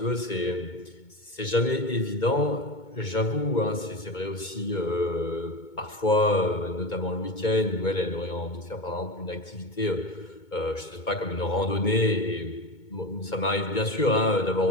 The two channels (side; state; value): right; late; 2.2 ms